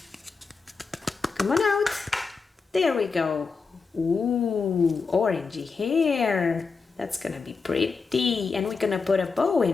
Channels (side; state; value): right; quieter; 4.8 dB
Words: Come on out. There we go. Ooh, orangey hair. That's gonna be pretty. And we're gonna put a bow